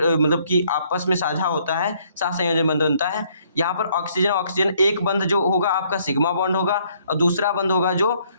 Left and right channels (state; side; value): inverted; both; correlation -0.66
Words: मतलब कि आपस में साझा होता है, सहसंयोजन बंध बनता है। यहाँ पर ऑक्सीजन एक बंध जो होगा आपका सिग्मा बॉन्ड होगा और दूसरा बंध होगा जो